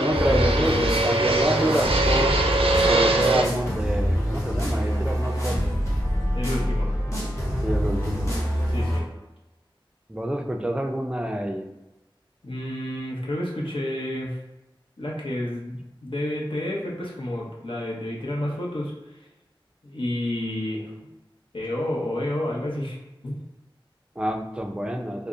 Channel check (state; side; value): normal; both; correlation 0.80